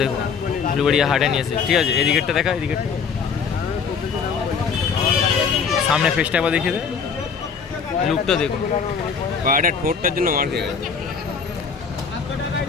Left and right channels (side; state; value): right; quieter; 6.0 dB